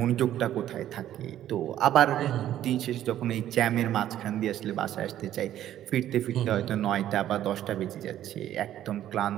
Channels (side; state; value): left; quieter; 12.0 dB